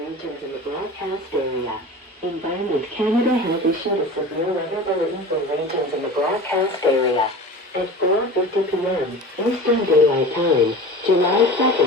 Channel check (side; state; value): both; normal; correlation 0.35